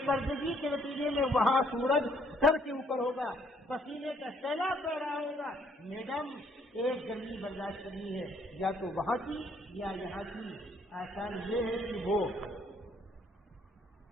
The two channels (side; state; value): both; normal; correlation 0.66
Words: پردگی کے نتیجے میں وہاں سورج سر کے اوپر ہوگا، پسینے کا سیلاب بہ رہا ہوگا، میڈم ایک گرمی برداشت کرنی ہے، یا تو وہاں کی یا یہاں کی، آسان یہ ہے کہ وہ